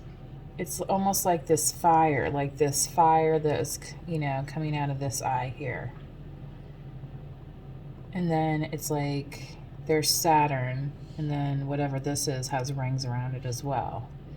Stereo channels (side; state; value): both; identical; correlation 1.00